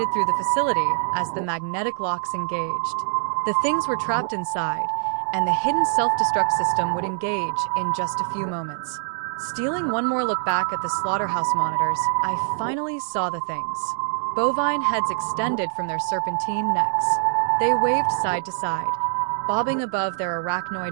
through the facility as the magnetic locks engaged. The things were trapped inside, and the hidden self-destruct system would engage in just a few moments. Stealing one more look back at the slaughterhouse monitors, I finally saw the things. Bovine heads extended from their serpentine necks. They waved side to side, bobbing above their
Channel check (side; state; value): left; silent; 63 dB below the other